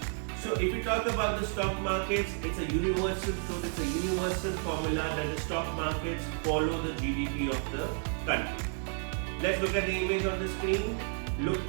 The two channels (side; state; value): left; silent; 57 dB below the other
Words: So if we talk about the stock markets, it's a universal truth, it's a universal formula that the stock markets follow the GDP of the country. Let's look at the image on the screen. Look